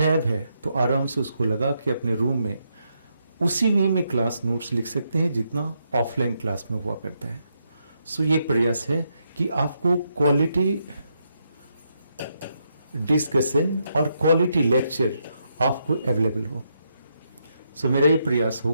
है तो आराम से उसको लगा के अपने रूम में उसी वे में क्लास नोट्स लिख सकते हैं जितना ऑफलाइन क्लास में हुआ करता है। सो ये प्रयास है कि आपको क्वालिटी डिस्कशन और क्वालिटी लेक्चर आपको अवेलेबल हो। सो मेरा ये प्रयास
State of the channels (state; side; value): inverted; both; correlation -0.79